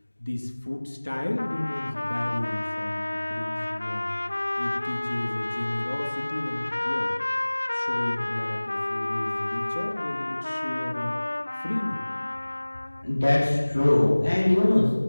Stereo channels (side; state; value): both; inverted; correlation -1.00